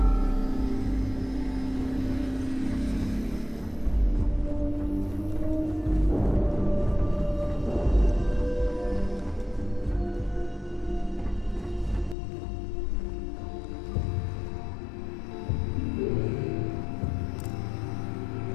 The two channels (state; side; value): drops out; right; at 12.2 s